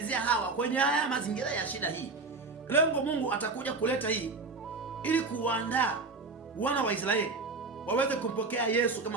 hawa kwenye haya mazingira ya shida hii. Lengo Mungu atakuja kuleta hii ili kuwaandaa wana wa Israeli waweze kumpokea Yesu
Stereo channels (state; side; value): quieter; left; 3.9 dB